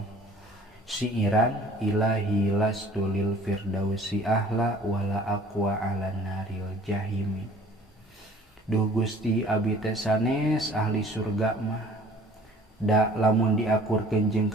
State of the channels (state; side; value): normal; both; correlation 0.50